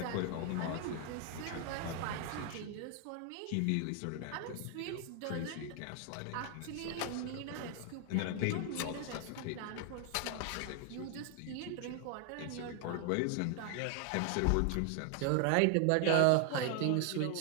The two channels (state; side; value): different; both; correlation 0.00